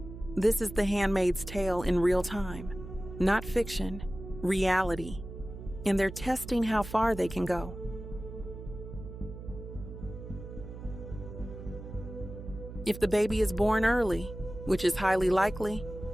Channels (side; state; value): right; noise; hum, 12 dB below the sound